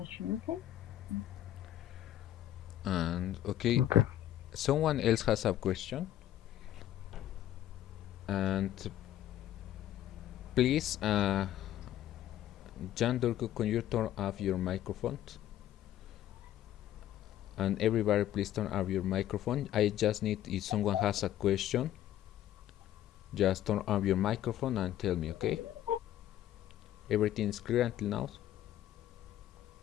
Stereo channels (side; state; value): right; quieter; 12.5 dB